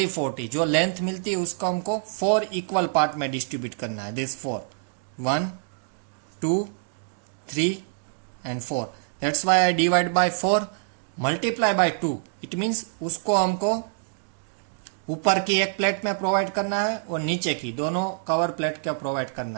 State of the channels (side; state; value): left; silent; digital silence